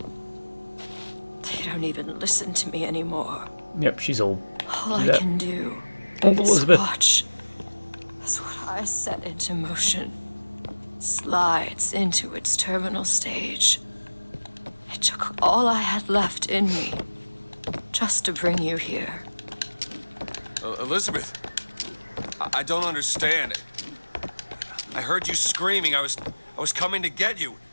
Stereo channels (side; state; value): both; inverted; correlation -1.00